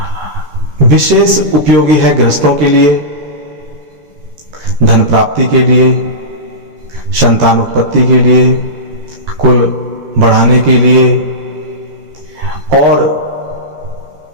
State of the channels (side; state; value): left; late; 13 ms